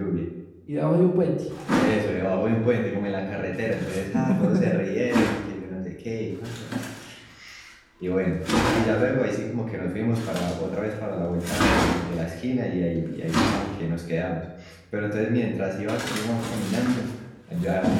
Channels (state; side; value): identical; both; correlation 1.00